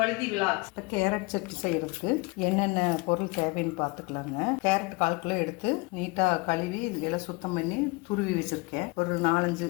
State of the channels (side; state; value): right; quieter; 26.7 dB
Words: vlogs. Carrot chutney செய்யறதுக்கு என்னென்ன பொருள் தேவைன்னு பார்த்துக்கலாங்க. கேரட் 1/4 கிலோ எடுத்து நீட்டாக கழுவி எல்லாம் சுத்தம் பண்ணி துருவி வச்சிருக்கேன். ஒரு 4-5